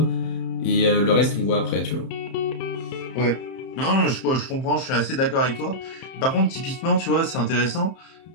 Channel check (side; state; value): right; late; 30 ms